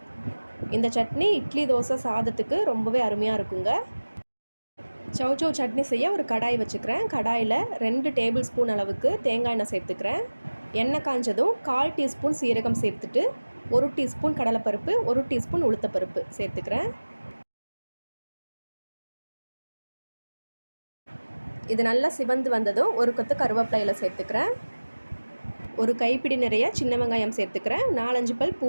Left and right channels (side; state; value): both; inverted; correlation -1.00